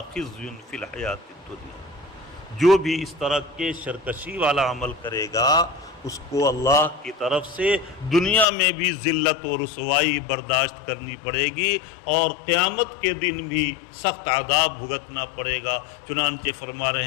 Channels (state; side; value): drops out; right; at 8.5 s